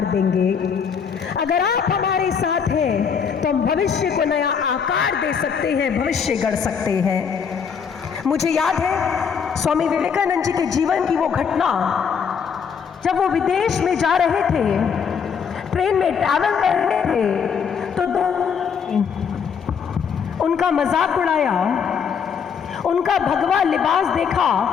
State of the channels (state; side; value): quieter; right; 6.8 dB